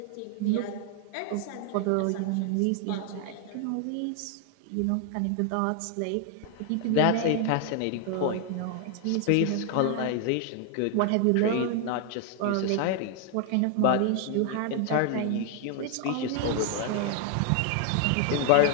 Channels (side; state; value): both; different; correlation 0.00